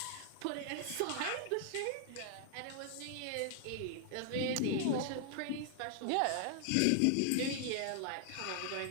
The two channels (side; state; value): both; different; correlation 0.00